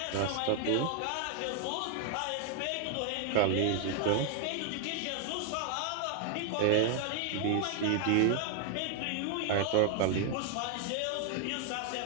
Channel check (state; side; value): different; both; correlation 0.00